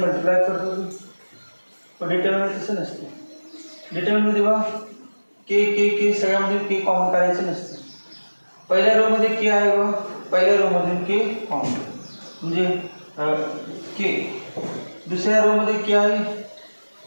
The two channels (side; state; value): both; inverted; correlation -1.00